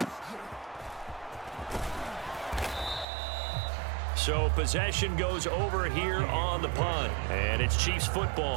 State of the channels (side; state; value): left; drops out; at 3.1 s